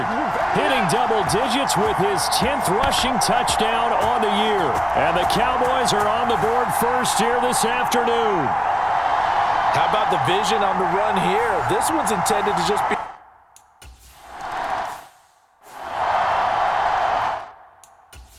hitting double digits with his 10th rushing touchdown on the year. And the Cowboys are on the board first here this afternoon. How about the vision on the run here? This one's intended to just be...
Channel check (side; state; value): both; identical; correlation 1.00